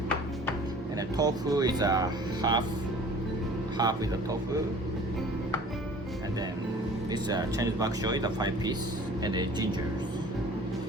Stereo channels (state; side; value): normal; both; correlation 0.47